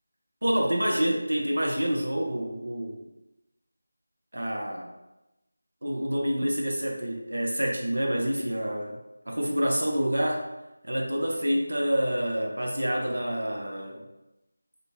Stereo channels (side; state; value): both; inverted; correlation -0.98